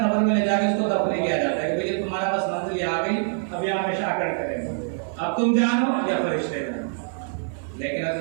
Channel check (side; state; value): left; silent; 60 dB below the other